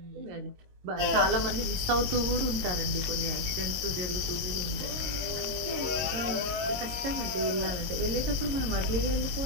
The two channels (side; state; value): left; late; 22 ms